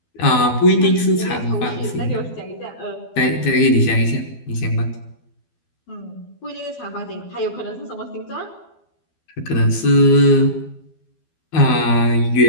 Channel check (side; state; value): right; late; 12 ms